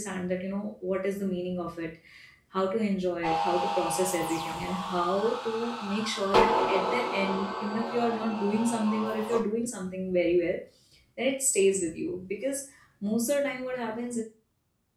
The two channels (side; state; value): both; identical; correlation 1.00